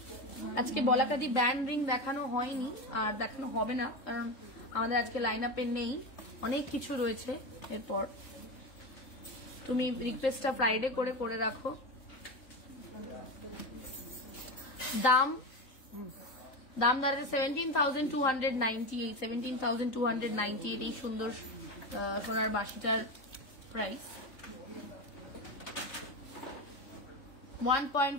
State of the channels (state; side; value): late; right; 3.8 ms